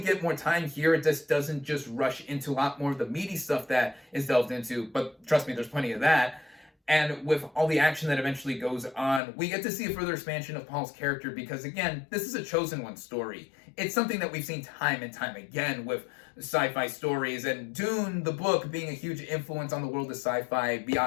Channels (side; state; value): right; drops out; at 9.2 s